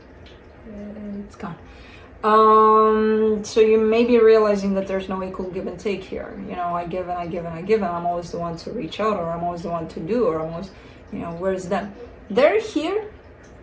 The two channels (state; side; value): identical; both; correlation 1.00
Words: It's gone. So you may be realizing that there's no equal give and take here. You know, I give and I give and I give, and I'm always the one to reach out, or I'm always the one to do, or I'm always, you know, where's them? They're here,